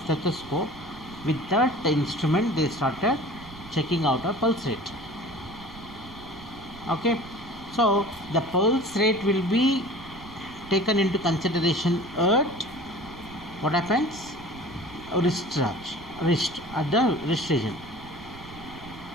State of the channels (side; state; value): right; noise; rumble, 18 dB below the sound